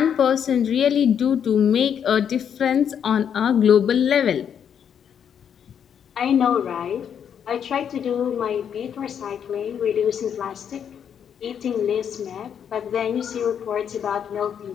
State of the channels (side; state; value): right; quieter; 8.3 dB